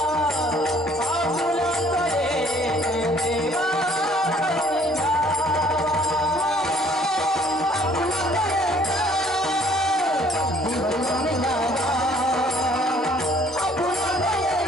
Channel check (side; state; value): both; normal; correlation 0.59